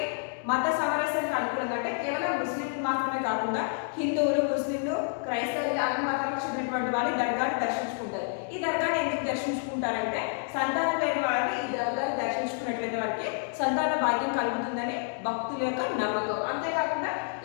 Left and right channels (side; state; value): right; silent; 59 dB below the other